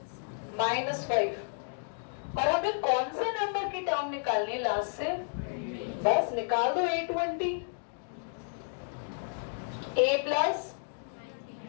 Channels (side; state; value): right; silent; digital silence